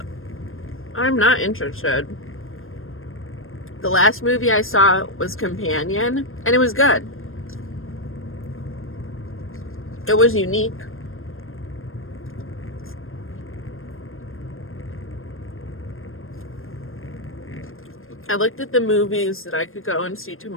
I'm not interested. The last movie I saw was Companion, and it was good. It was unique. I looked at the movies that I could go and see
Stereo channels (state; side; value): late; right; 0.60 ms